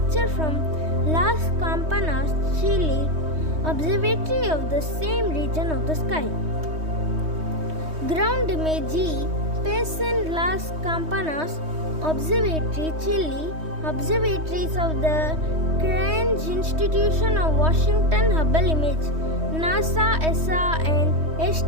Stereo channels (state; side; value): late; left; 3.2 ms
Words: from Las Campanas, Chile, observatory of the same region of the sky. Ground image E, Payson Las Campanas, Observatory, Chile, observatories of the Cranch Institution of Washington. Hubble image, NASA, ESA, and